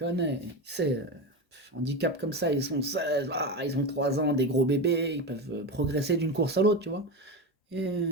il sait, handicap comme ça, ils sont 16, ils ont 3 ans, des gros bébés, ils peuvent progresser d'une course à l'autre, tu vois. Et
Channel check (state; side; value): normal; both; correlation 0.20